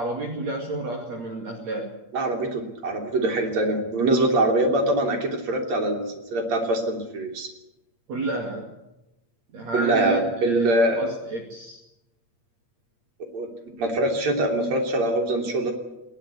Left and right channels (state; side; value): late; left; 8.6 ms